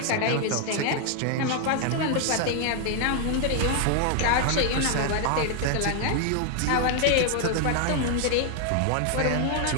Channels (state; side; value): different; both; correlation 0.00